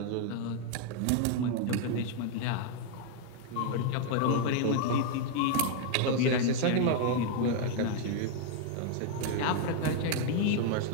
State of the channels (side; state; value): both; different; correlation 0.00